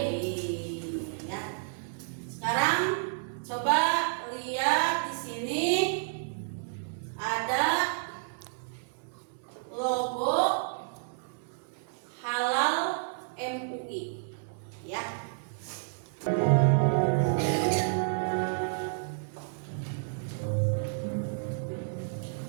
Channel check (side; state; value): left; silent; digital silence